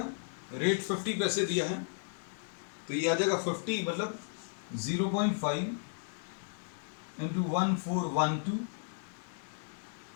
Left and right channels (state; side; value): silent; right; digital silence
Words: रेट 50 पैसे दिया है, तो ये आ जाएगा 50 मतलब 0.5 इंटू 1412